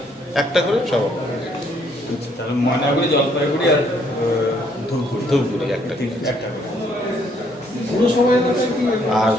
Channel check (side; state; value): both; normal; correlation 0.68